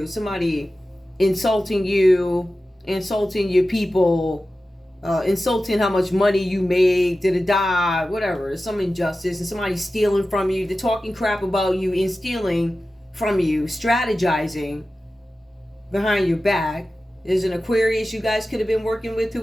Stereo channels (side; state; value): both; normal; correlation 0.94